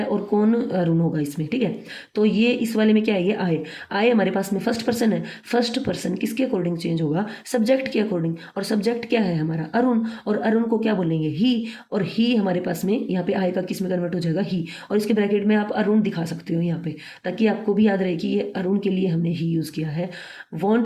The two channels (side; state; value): both; identical; correlation 1.00